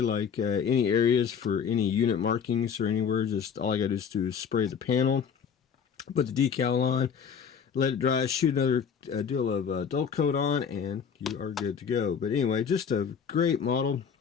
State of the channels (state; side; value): quieter; right; 7.1 dB